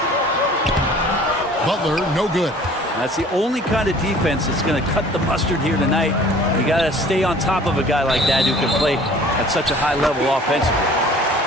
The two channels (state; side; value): normal; both; correlation 0.50